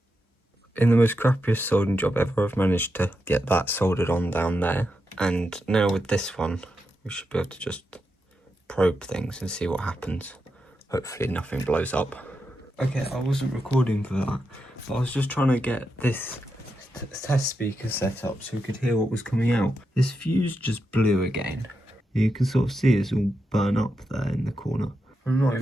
In the most crappiest soldering job ever, I've managed to get that soldered on down there. And now with this one, we should be able to just probe things and see what happens. Hopefully nothing blows up. Okay, I wasn't recording for that, but I was just trying to get this test speaker set up so we could hear what was coming out. This fuse just blew again. You can sort of see it's all burn up there in the corner. I'm not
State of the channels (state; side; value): normal; both; correlation 0.86